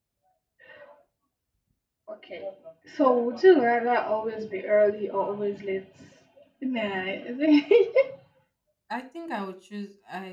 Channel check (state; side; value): identical; both; correlation 1.00